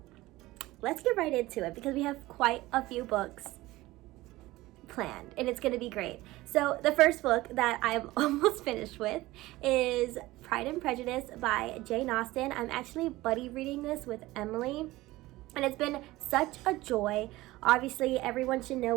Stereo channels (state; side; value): quieter; left; 18.5 dB